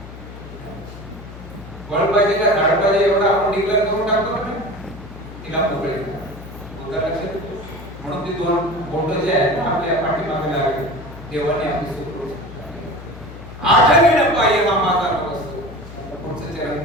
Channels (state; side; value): noise; left; hum, 14 dB below the sound